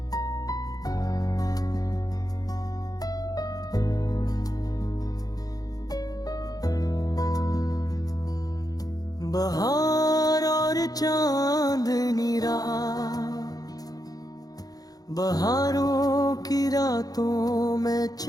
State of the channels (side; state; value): right; late; 0.18 ms